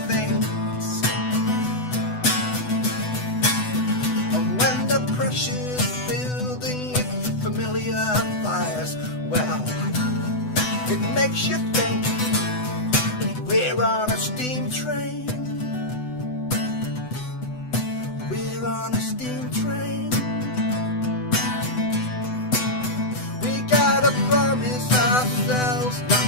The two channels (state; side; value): late; right; 8.0 ms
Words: things. And when the pressure's building with familiar fires, well, it makes you think we're on a steam train. We're on a steam train. We gotta promise ourselves not